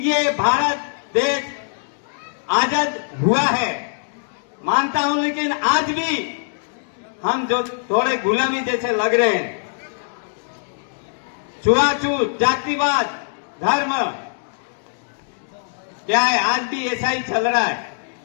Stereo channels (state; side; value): silent; right; digital silence